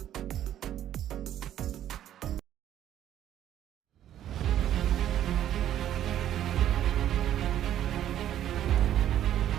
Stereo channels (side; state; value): left; quieter; 11.4 dB